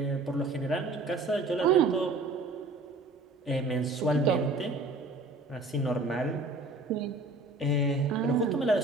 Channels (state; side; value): quieter; left; 3.1 dB